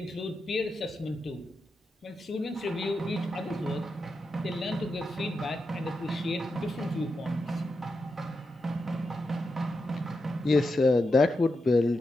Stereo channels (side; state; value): both; normal; correlation 0.87